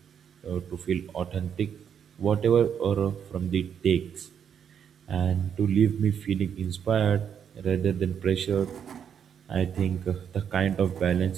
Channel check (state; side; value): quieter; left; 8.1 dB